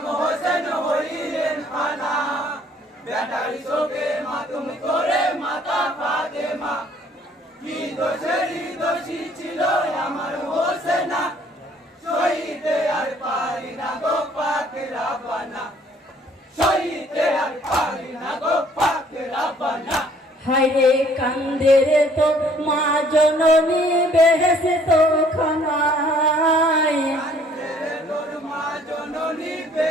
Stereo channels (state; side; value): normal; both; correlation 0.60